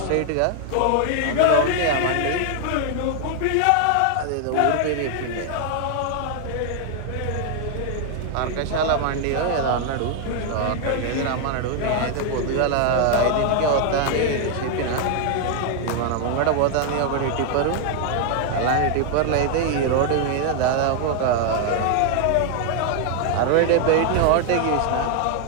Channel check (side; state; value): both; different; correlation 0.00